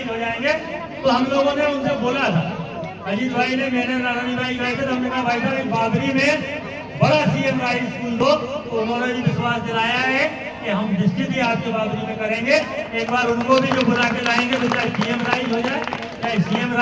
हो जाएंगे। तो हम लोगों ने उनसे बोला था, अजीत भाई ने मैंने नारायण भाई गए थे, तो हमने कहा भाई साहब बाबरी में बड़ा सीएम राइज स्कूल दो, तो उन्होंने भी विश्वास दिलाया है कि हम निश्चित ही आपके बाबरी में करेंगे। एक बार उनको भी जो बुला के लाएंगे तो चाहे पीएम राइज हो जाए चाहे सीएम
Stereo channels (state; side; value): identical; both; correlation 1.00